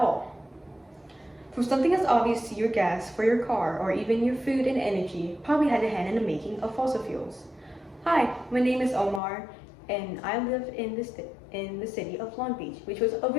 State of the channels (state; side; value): drops out; right; at 9.2 s